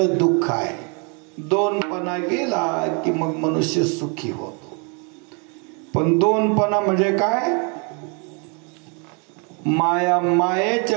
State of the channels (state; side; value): quieter; left; 35.1 dB